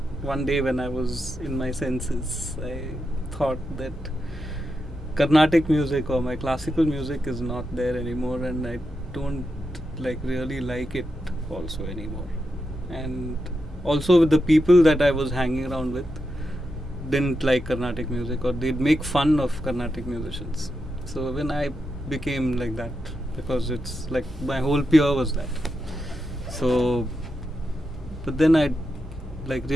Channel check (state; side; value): normal; both; correlation 0.87